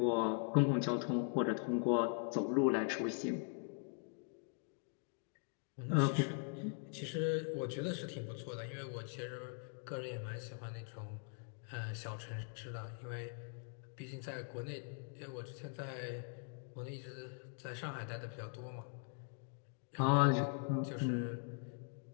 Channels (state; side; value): silent; right; 50 dB below the other